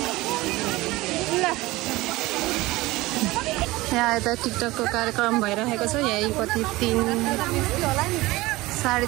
यहाँ यता टिकटकको कार्यक्रम भइरहेको छ। यही कति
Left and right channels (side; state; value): left; quieter; 19.8 dB